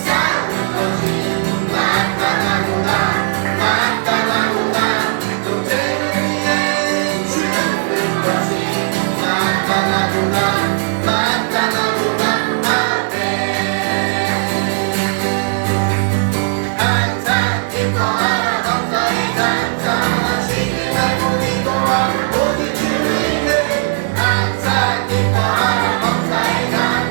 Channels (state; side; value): silent; left; digital silence